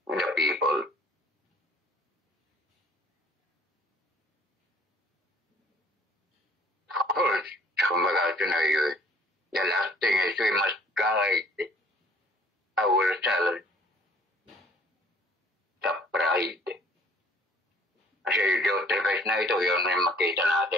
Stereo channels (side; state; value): both; normal; correlation 0.56